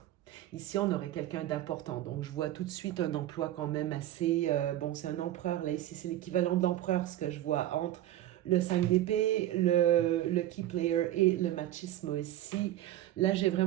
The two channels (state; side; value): quieter; left; 13.6 dB